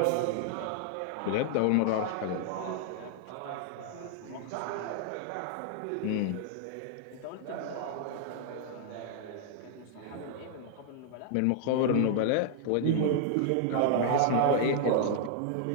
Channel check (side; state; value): both; different; correlation -0.01